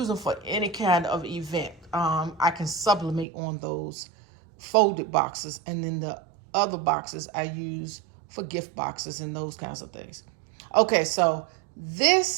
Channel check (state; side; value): drops out; left; at 3.2 s